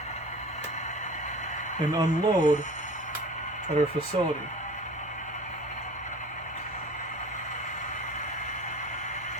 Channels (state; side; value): noise; right; hum, 23 dB below the sound